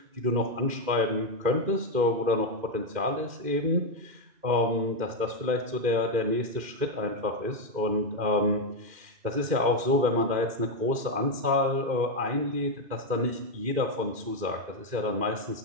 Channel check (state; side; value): late; left; 2.1 ms